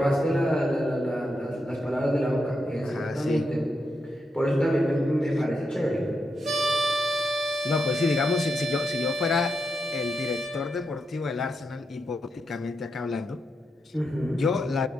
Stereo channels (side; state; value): both; normal; correlation 0.84